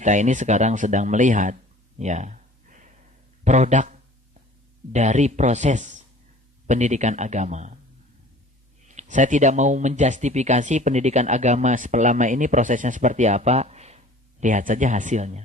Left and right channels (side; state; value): both; normal; correlation 0.47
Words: ini sekarang sedang melihat ya produk dari proses pendidikan agama. Saya tidak mau menjustifikasi pendidikan agama selama ini prosesnya seperti apa. Lihat saja